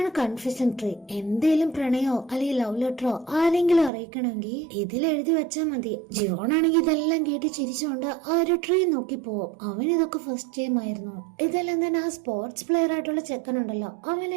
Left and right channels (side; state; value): left; drops out; at 3.9 s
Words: കൺഫെഷൻ ട്രീ. എന്തേലും പ്രണയോ അല്ലെങ്കിൽ ലവ് ലെറ്ററോ ആരെങ്കിലും അറിയിക്കണമെങ്കിൽ ഇതിൽ എഴുതി വെച്ചാൽ മതി. ജിവോണാണെങ്കിൽ ഇതെല്ലാം കേട്ട് ചിരിച്ചുകൊണ്ട് ആ ഒരു ട്രീ നോക്കി പോവും. അവൻ ഇതൊക്കെ ഫസ്റ്റ് ടൈം ആയിരുന്നു. ഇതെല്ലാം തന്നെ ആ സ്പോർട്സ് പ്ലെയർ ആയിട്ടുള്ള ചെക്കനുണ്ടല്ലോ,